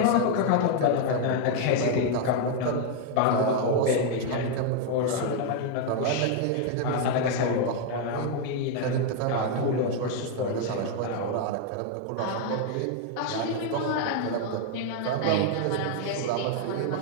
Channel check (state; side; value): different; both; correlation 0.00